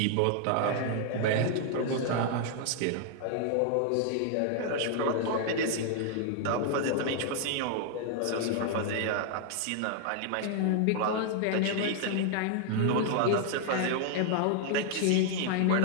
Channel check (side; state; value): both; different; correlation 0.00